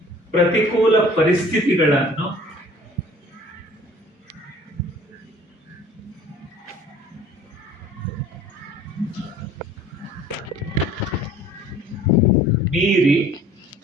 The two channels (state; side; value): normal; both; correlation 0.50